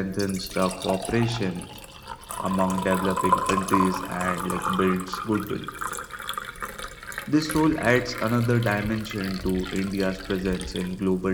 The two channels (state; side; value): identical; both; correlation 1.00